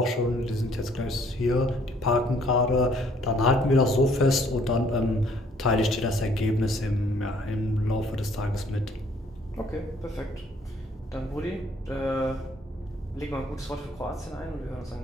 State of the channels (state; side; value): normal; both; correlation 0.62